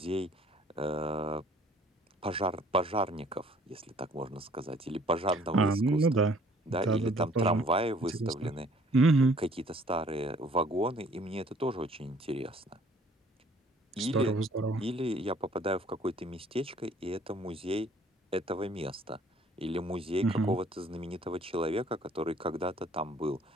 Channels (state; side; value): normal; both; correlation 0.58